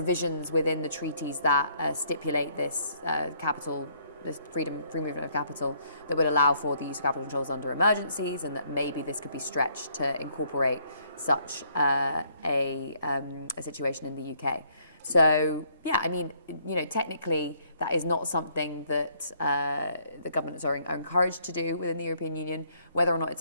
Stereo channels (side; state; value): both; inverted; correlation -0.66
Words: within the treaties that stipulate this this free movement of capital that would allow for the use of capital controls under emergencies, and that maybe this could be stretched to incorporate such a situation in the UK. So, yeah, I mean, technically that is not something that the governments are encouraged to do within the European Union. Whether or not it's